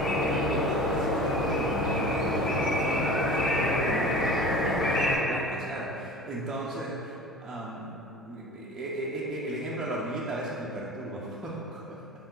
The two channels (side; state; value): both; normal; correlation 0.39